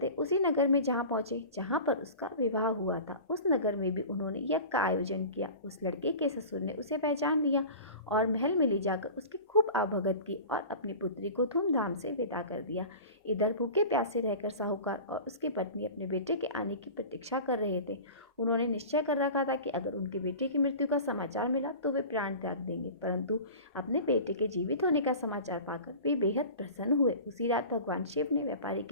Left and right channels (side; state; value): both; inverted; correlation -0.37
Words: उसी नगर में जहाँ पहुंचे जहाँ पर उसका विवाह हुआ था। उस नगर में भी उन्होंने यज्ञ का आयोजन किया। उस लड़के के ससुर ने उसे पहचान लिया और महल में ले जाकर उसकी खूब आवभगत की और अपनी पुत्री को धूमधाम से विदा कर दिया। इधर भूखे प्यासे रहकर साहूकार और उसकी पत्नी अपने बेटे के आने की प्रतीक्षा कर रहे थे। उन्होंने निश्चय कर रखा था कि अगर उनके बेटे की मृत्यु का समाचार मिला तो वे प्राण त्याग देंगे, परंतु अपने बेटे के जीवित होने का समाचार पाकर वे बेहद प्रसन्न हुए। उसी रात भगवान शिव ने व्यापारी